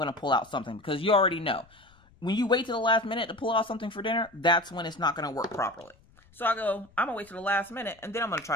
to pull out something because you already know. When you wait till the last minute to pull out something for dinner, that's when it's not going to work properly. So I go, I'm going to wait till the last minute, and then I'm going to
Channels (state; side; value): noise; left; rumble, 29 dB below the sound